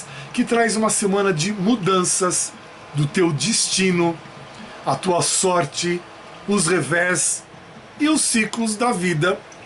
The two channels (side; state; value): both; identical; correlation 1.00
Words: que traz uma semana de mudanças do teu destino, a tua sorte, os revés e os ciclos da vida,